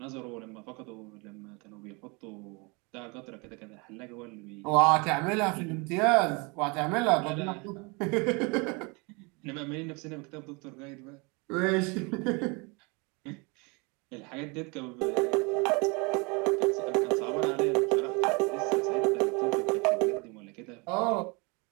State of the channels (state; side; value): quieter; left; 29.3 dB